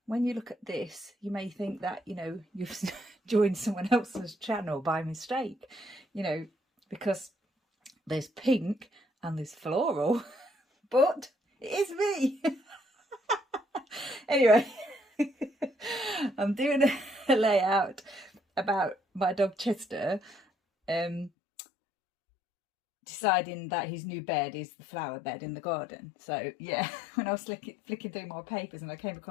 when you look at this you may think that, you know, you've joined someone else's channel by mistake, you know, because there's pink and there's floral, but it is me. Anyway, I'm doing a layout about my dog Chester, deciding that his new bed is the flower bed in the garden. So yeah, when I was flicking through my papers and I came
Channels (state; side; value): drops out; right; at 21.3 s